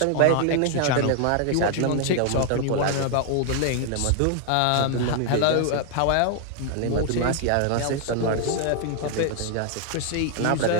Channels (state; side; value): different; both; correlation 0.00